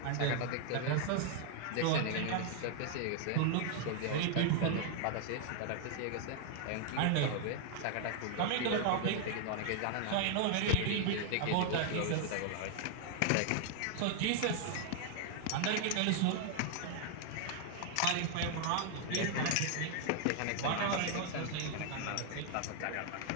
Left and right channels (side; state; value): both; different; correlation 0.00